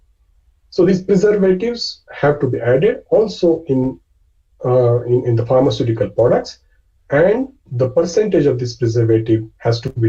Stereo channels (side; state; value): both; identical; correlation 1.00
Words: So these preservatives have to be added also in the pharmaceutical products, and the percentage of this preservative has to